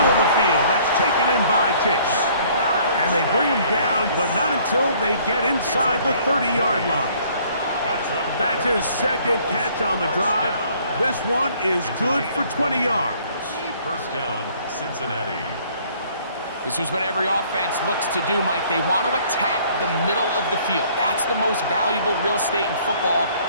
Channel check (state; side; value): inverted; both; correlation -0.59